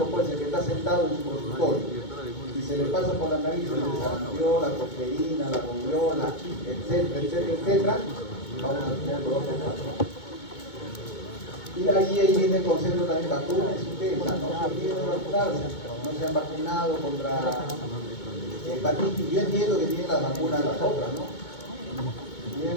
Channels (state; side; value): late; right; 2.2 ms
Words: pues, el que está sentado en su consultorio. Y se le pasa por la nariz el sarampión, la tosferina, la rubiola, etcétera, etcétera, etcétera, vamos a tener brotes, rapones. Y ahí viene el concepto también, vacunas ustedes, no se olviden de vacunarse, no se han vacunado contra hepatitis. Yo entiendo que tienen las vacunas las otras, ¿no? Tienen